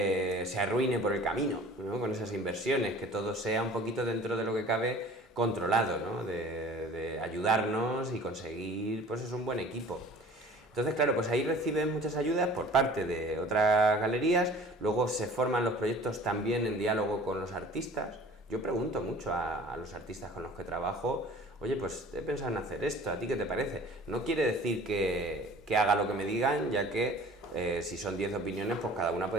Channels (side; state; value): both; normal; correlation 0.46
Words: arruine por el camino, ¿no? Con esas inversiones, que todo sea un poquito dentro de lo que cabe controlado, ¿no? De ayudarnos y conseguir pues es un buen equipo. Entonces, claro, pues ahí reciben muchas ayudas por parte de otras galerías, luego se forman los proyectos también en diálogo con los artistas. Yo pregunto mucho a los artistas con los que trabajo, oye, pues he pensado en hacer esto, ¿a ti qué te parece? No quiere decir que haga lo que me digan, ya que si son 10 opiniones, pues cada una